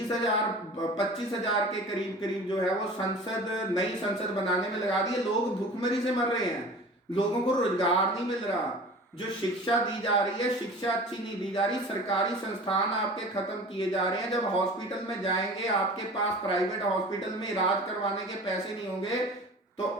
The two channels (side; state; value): both; normal; correlation 0.40